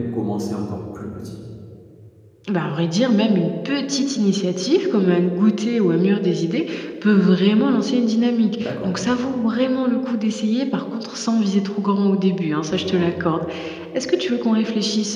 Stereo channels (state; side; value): identical; both; correlation 1.00